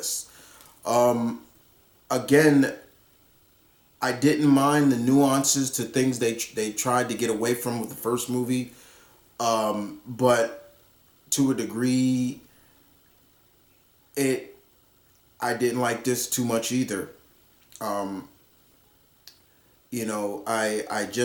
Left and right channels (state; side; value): identical; both; correlation 1.00